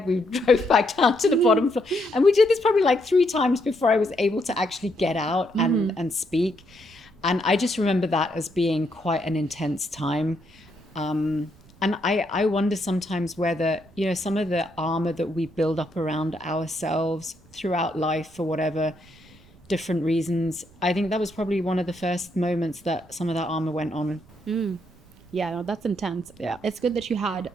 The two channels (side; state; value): right; noise; rumble, 26 dB below the sound